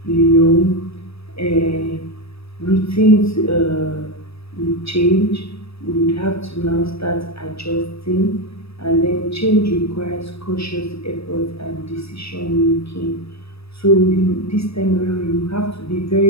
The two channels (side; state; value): right; late; 0.78 ms